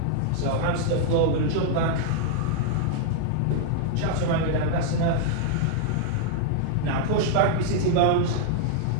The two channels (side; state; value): both; different; correlation -0.01